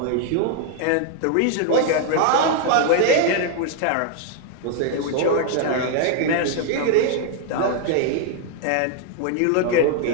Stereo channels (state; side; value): different; both; correlation 0.00